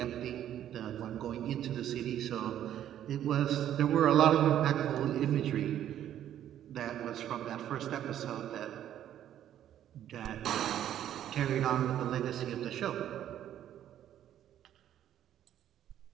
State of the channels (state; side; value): quieter; left; 11.1 dB